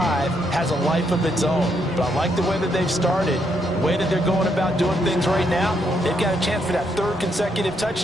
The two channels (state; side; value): normal; both; correlation 0.76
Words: has a life of its own. But I like the way that they've started, the way that they're going about doing things right now. They've got a chance for that 3rd consecutive